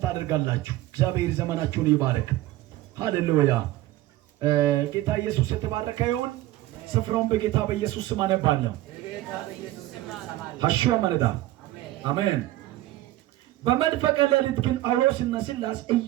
አድርጋላችሁ። እግዚአብሔር ዘመናችሁን ይባርክ። ሃሌሉያ። ጌታ ኢየሱስ የተባረከ ይሁን። ስፍራውን በጌታ በኢየሱስ ስም አነባለሁ። ሐሽዋ መረዳ አሜን። በመንፈቀ ሌሊት ግን ጳውሎስና ሲላስ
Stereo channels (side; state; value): left; quieter; 16.1 dB